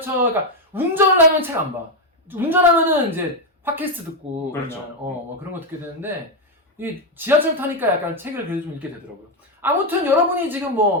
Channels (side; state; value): both; normal; correlation 0.06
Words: 그러니까 운전을 하면 책 안 봐. 운전하면은 이제 팟캐스트 듣고 그렇죠. 그냥 뭐 그런 거 듣게 되는데 이 지하철 타니까 약간 책을 그래도 좀 읽게 되더라고요. 아무튼 여러분이 지금